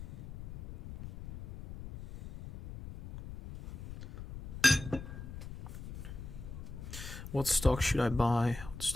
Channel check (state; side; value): noise; left; rumble, 11 dB below the sound